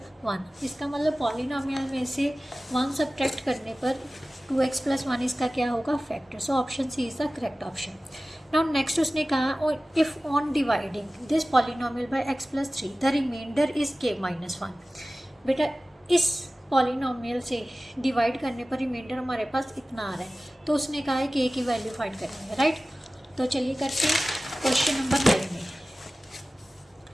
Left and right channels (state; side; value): normal; both; correlation 0.97